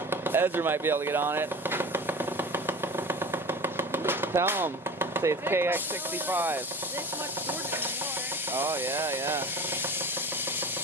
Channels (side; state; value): both; normal; correlation 0.36